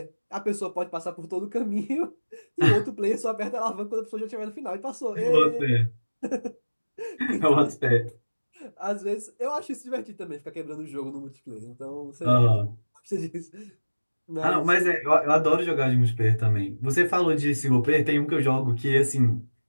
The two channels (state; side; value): inverted; both; correlation -1.00